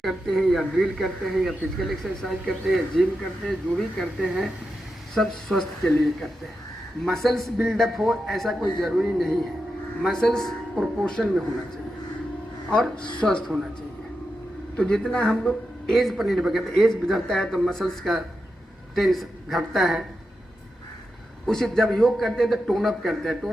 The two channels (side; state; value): both; normal; correlation 0.88